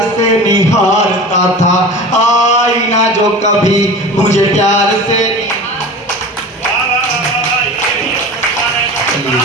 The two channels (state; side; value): normal; both; correlation 0.35